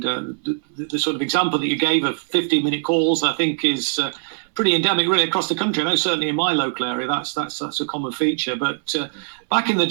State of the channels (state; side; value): silent; left; digital silence